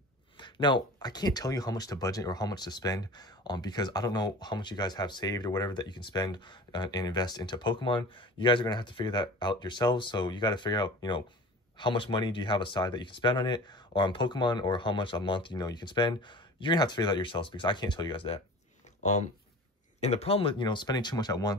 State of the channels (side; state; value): both; normal; correlation 0.39